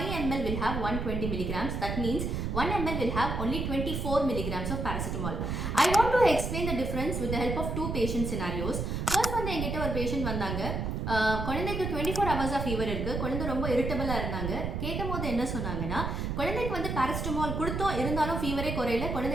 ml will have 120 milligrams. That means 1 ml will have only 24 milligrams of paracetamol. I want to explain the difference with the help of two patient scenarios. First வந்து என்கிட்ட ஒரு patient வந்தாங்க. குழந்தைக்கு 24 hours of fever இருக்கு. குழந்தை ரொம்ப இரிட்டபிளா இருந்தாங்க. கேட்கும்போது என்ன சொன்னாங்கன்னா குழந்தைக்கு வந்து பாராசிட்டமால் கொடுத்தோம் இருந்தாலும் ஃபீவரே குறையல,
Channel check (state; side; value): noise; right; rumble, 2 dB below the sound